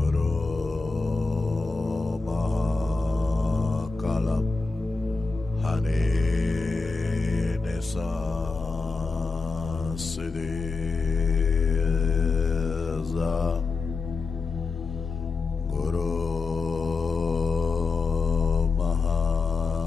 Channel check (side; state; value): right; quieter; 4.1 dB